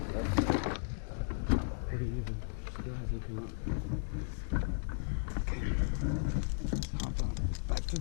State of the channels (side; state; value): right; silent; digital silence